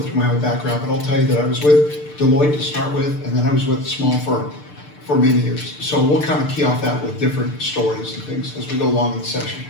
my whole background, but I'll tell you that I was with Deloitte to start with, and then I was with a small firm for many years. So we'll kind of key off that with different stories and things as we go along in the session.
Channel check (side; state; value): right; late; 6.7 ms